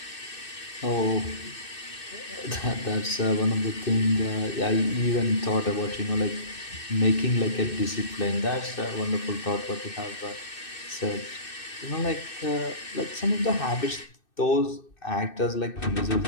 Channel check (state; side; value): late; right; 2.6 ms